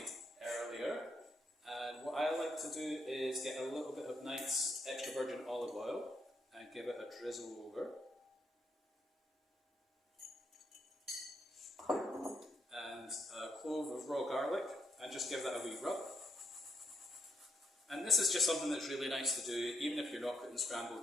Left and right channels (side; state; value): both; normal; correlation 0.77